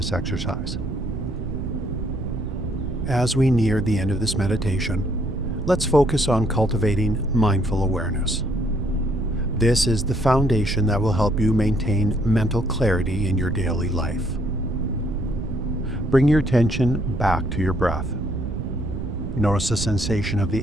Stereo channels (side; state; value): right; noise; rumble, 5 dB below the sound